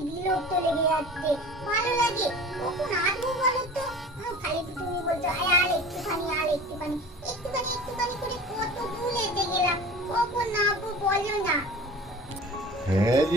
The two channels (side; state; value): both; normal; correlation 0.39